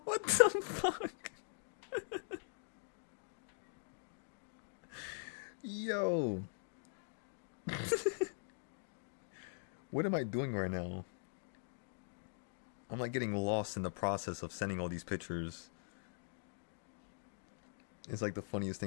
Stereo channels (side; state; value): right; silent; digital silence